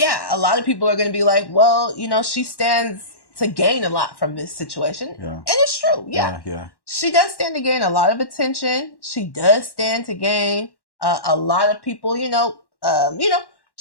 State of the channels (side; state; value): right; late; 1.1 ms